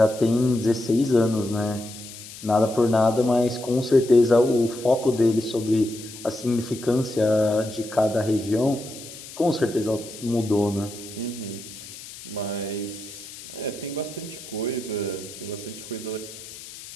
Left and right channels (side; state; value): left; noise; hiss, 15 dB below the sound